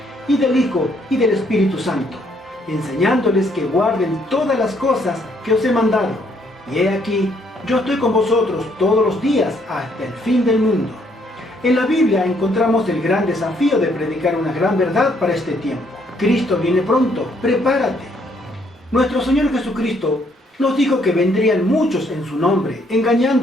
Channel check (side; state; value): both; normal; correlation 0.69